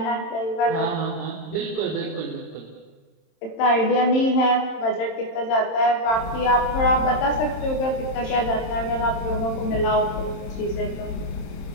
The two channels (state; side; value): late; right; 27 ms